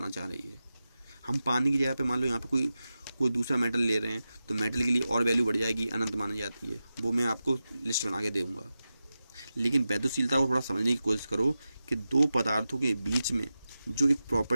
चाह रही है। हम पानी की जगह पे मान लो यहाँ पे कोई कोई दूसरा मेटल ले रहे हैं तो मेटल के लिए और वैल्यू बढ़ जाएगी, अनंत मानी जाती है, वो मैं आपको लिस्ट बना के दूँगा। लेकिन वैद्युशीलता को थोड़ा समझने की कोशिश करो कि दो पदार्थों के बीच में जो एक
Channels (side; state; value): both; inverted; correlation -0.93